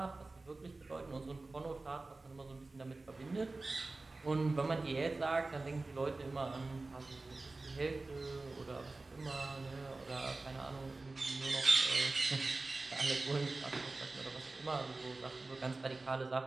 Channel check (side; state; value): left; quieter; 3.3 dB